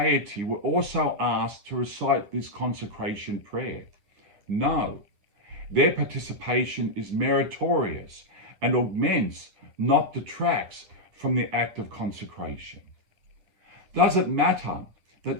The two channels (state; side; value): late; left; 10 ms